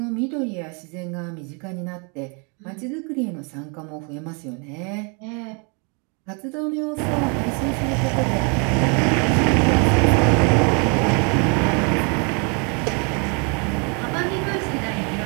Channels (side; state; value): left; quieter; 35.1 dB